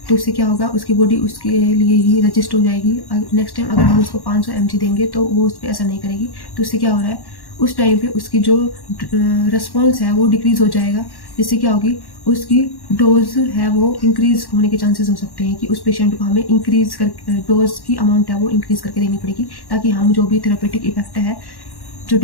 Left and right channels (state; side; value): late; right; 1.1 ms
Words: तो उससे क्या होगा, उसकी बॉडी उसके लिए ही रजिस्ट हो जाएगी। नेक्स्ट टाइम अगर हम उसको 500 mg देंगे तो वो उस पर असर नहीं करेगी। तो उससे क्या हो रहा है, उस टाइम पे उसकी जो रिस्पॉन्स है वो डिक्रीज़ हो जाएगा, जिससे क्या होगी, उसकी डोज है वो इंक्रीज़ होने के चांसेस हो सकते हैं कि उस पेशेंट को हमें इंक्रीज़ कर डोज की अमाउंट है वो इंक्रीज़ करके देनी पड़ेगी, ताकि हम जो भी थेरेपेटिक इफेक्ट है, जो